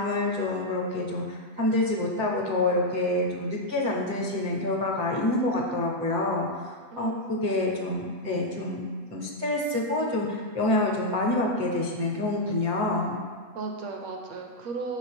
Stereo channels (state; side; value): late; left; 7.8 ms